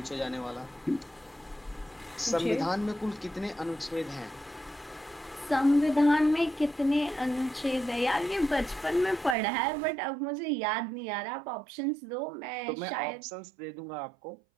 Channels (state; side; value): drops out; left; at 9.3 s